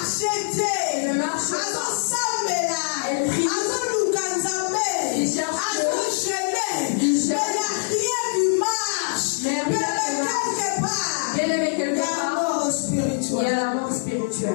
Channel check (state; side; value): silent; right; digital silence